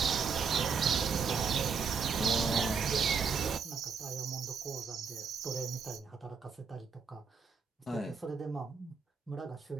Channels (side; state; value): left; quieter; 5.6 dB